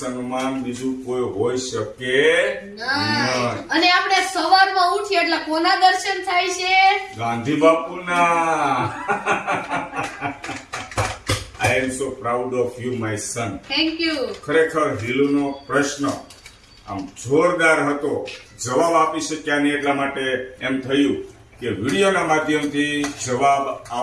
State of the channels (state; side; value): identical; both; correlation 1.00